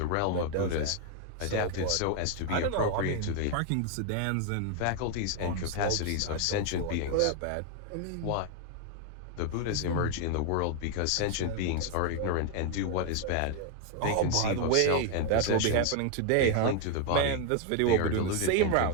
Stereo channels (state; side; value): different; both; correlation 0.00